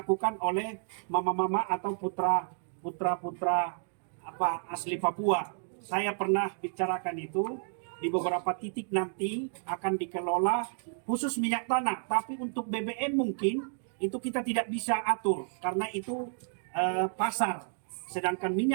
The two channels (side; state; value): left; silent; digital silence